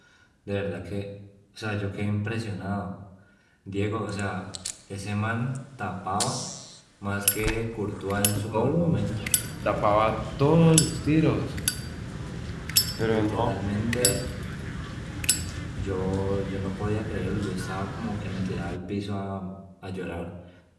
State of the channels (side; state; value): both; identical; correlation 1.00